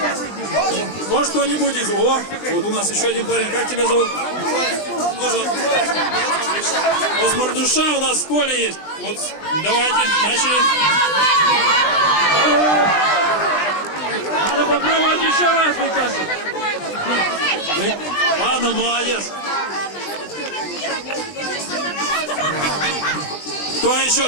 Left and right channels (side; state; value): right; late; 20 ms